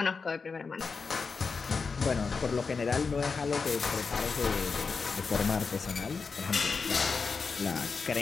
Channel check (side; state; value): right; quieter; 4.9 dB